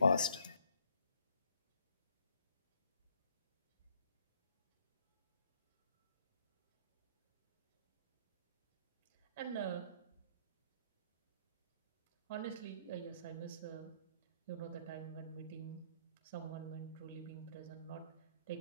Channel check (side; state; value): both; inverted; correlation -0.66